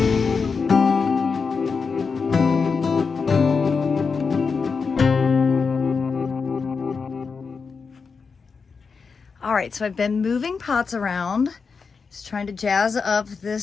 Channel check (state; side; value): quieter; right; 5.2 dB